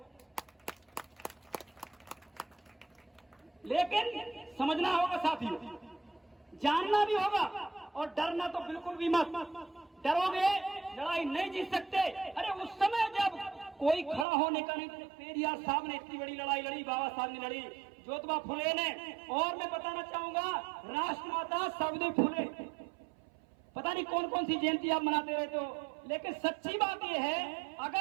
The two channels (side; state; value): left; drops out; at 14.2 s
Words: लेकिन समझना होगा साथियों, जानना भी होगा और डरना तो बिल्कुल भी मत। डरोगे लड़ाई नहीं जीत सकते। अरे उस समय जब कोई खड़ा होने का नहीं, तो पेरियार साहब ने इतनी बड़ी लड़ाई लड़ी, बाबा साहब ने लड़ी, ज्योतिबा फुले ने, और मैं बताना चाहूंगा राष्ट्रमाता सावित्री फुले, पता नहीं कौन कौन सी जयंती आप मनाते रहते हो। लेकिन सच्ची बात यह है,